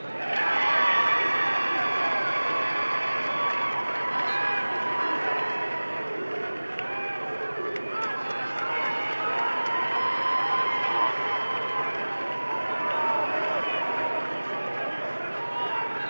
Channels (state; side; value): inverted; both; correlation -1.00